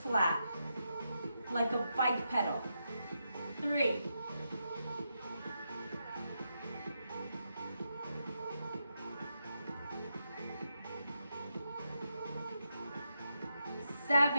flat, like a bike pedal. 3,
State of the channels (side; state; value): both; inverted; correlation -0.84